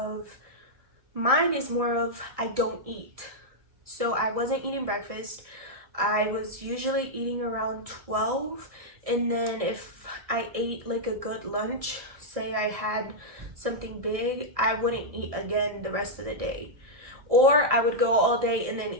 I don't eat. So I wasn't eating breakfast. I was usually eating around 12, and then if I ate like a good lunch, say I had something big, I wouldn't eat again the rest of the day. Or I would go all day and then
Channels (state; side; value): late; left; 1.7 ms